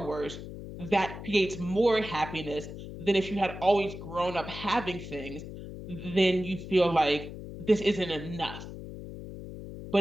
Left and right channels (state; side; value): noise; left; hum, 11 dB below the sound